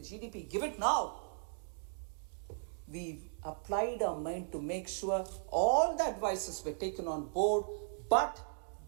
GDP. Give it now. We applied our mind to make sure all the advices were taken on board, but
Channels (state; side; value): silent; left; digital silence